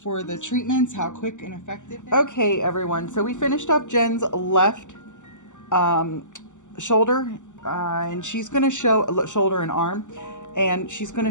the treatments, how quick and effective. Okay, everyone. So we finished up Jen's left shoulder, and she's going to show shoulder and arm, and she's going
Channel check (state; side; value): late; right; 0.85 ms